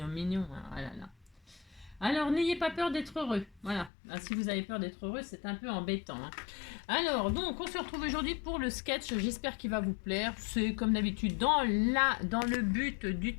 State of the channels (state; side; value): drops out; right; at 3.9 s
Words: mignon. Hein. Ah là là. Alors, n'ayez pas peur d'être heureux. Voilà. Ah, si vous avez peur d'être heureux, c'est un peu embêtant. Hein. Alors, donc, on se retrouve aujourd'hui pour le sketch. J'espère qu'il va vous plaire. C'est comme d'habitude dans le but